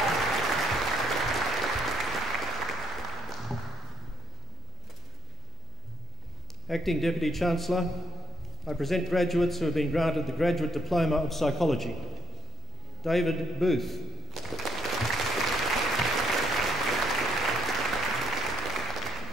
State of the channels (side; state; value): left; noise; hum, 23 dB below the sound